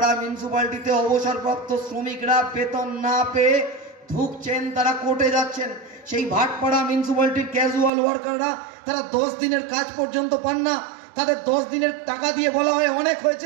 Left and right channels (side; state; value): left; drops out; at 7.9 s